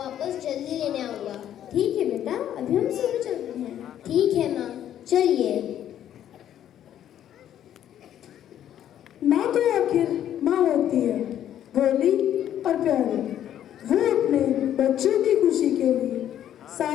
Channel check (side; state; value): right; quieter; 10.8 dB